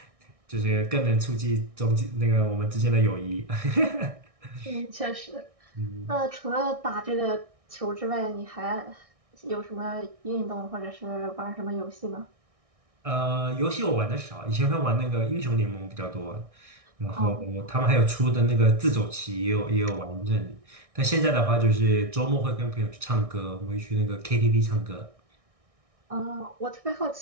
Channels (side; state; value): left; late; 1.6 ms